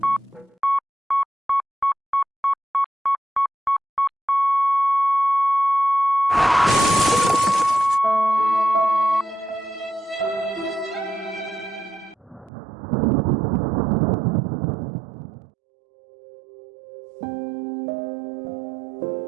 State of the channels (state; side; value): drops out; left; at 12.5 s